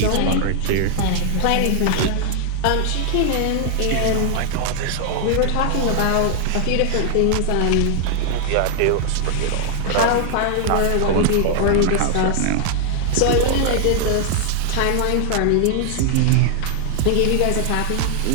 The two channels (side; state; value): both; different; correlation -0.01